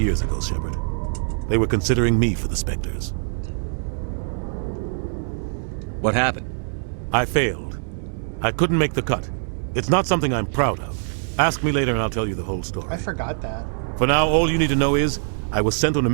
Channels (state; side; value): silent; left; digital silence